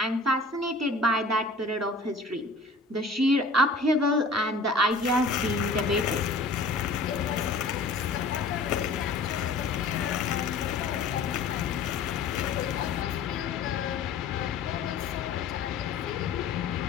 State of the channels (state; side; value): quieter; right; 3.4 dB